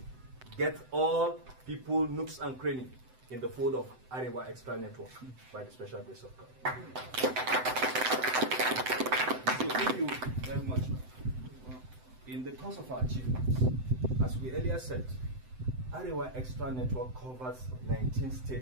get all people, nooks and crannies in the fold of Arewa Extra Network by the special grace of God. So thank you very much. In the course of our achievements, as we earlier said, Arewa Extra Network covers 19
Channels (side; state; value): left; late; 7.8 ms